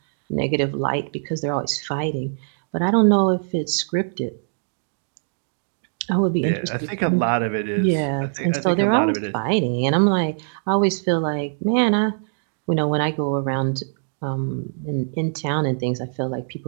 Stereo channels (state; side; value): silent; left; digital silence